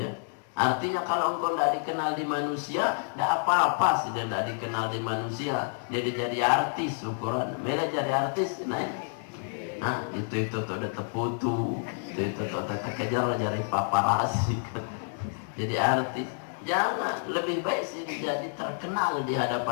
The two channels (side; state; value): right; silent; digital silence